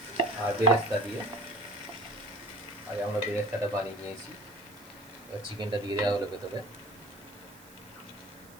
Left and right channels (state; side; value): noise; right; hiss, 22 dB below the sound